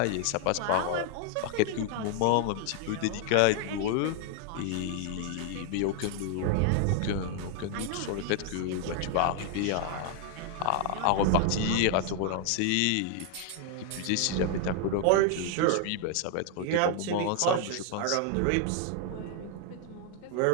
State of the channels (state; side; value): different; both; correlation 0.00